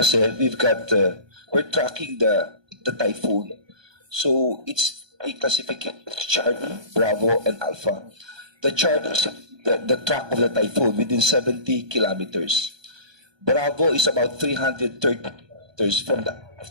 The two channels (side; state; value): left; late; 1.2 ms